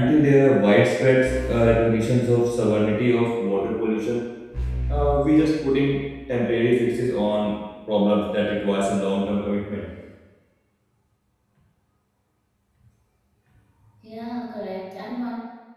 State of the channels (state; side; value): identical; both; correlation 1.00